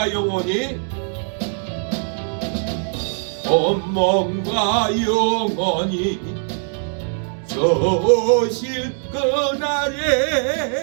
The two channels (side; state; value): left; silent; 63 dB below the other